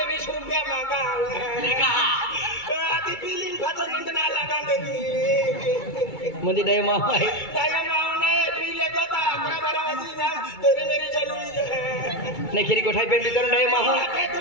20 रुपया मांगा देखा आती बिलिंग फसन ना लगा दे मुझे दे मां है काय मावने पीले गोता नाही खिरी गोठाई पेन वितरण आहे माहू काय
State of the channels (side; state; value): right; late; 2.3 ms